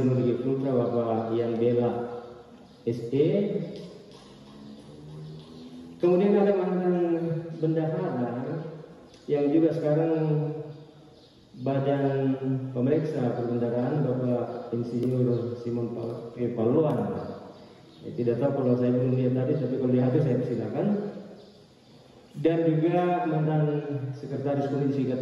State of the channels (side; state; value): both; identical; correlation 1.00